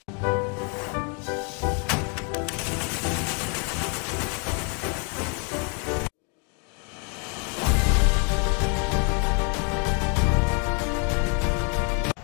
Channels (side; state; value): right; quieter; 37.0 dB